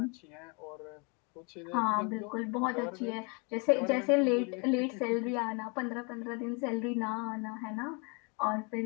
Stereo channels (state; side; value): quieter; right; 32.9 dB